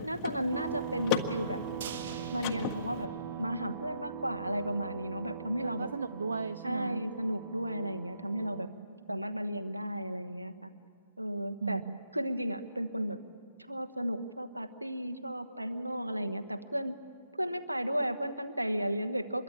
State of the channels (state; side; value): inverted; both; correlation -0.77